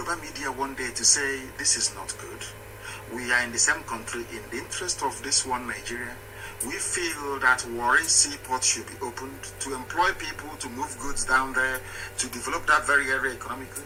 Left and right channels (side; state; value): both; identical; correlation 1.00